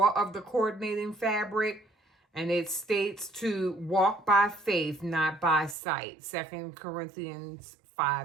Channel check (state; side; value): drops out; left; at 5.8 s